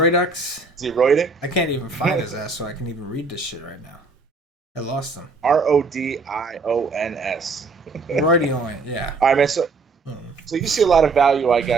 Is he roiding? I can't even find his ass, so I can even read this shit right now. I lost him. Rodions. Roydioin, yeah. All right, man. So you see a lot of value, I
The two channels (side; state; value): left; quieter; 3.9 dB